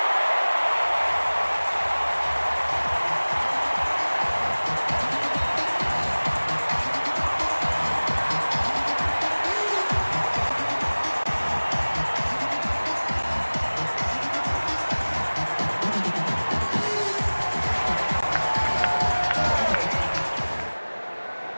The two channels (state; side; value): inverted; both; correlation -1.00